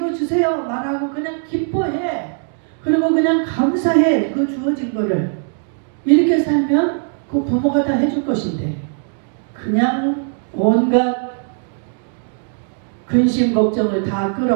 주세요 말하고 그냥 기뻐해. 그리고 그냥 감사해. 그 주어진 거를. 이렇게 살면 그 부모가 다 해줄 것인데 그냥 온갖 근심 걱정을 다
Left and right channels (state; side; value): silent; left; 56 dB below the other